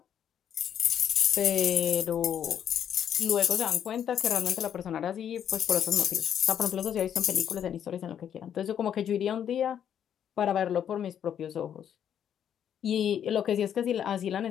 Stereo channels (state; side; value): quieter; right; 9.2 dB